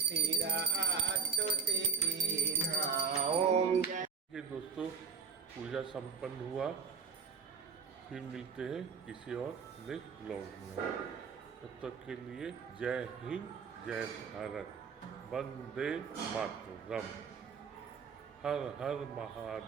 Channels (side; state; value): left; quieter; 5.9 dB